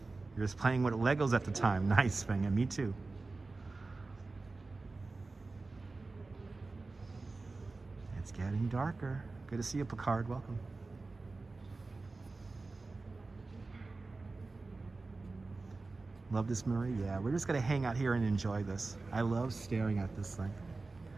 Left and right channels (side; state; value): left; quieter; 3.6 dB